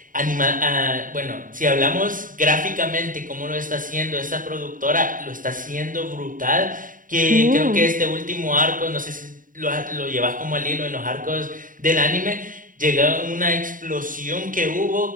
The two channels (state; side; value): late; left; 0.39 ms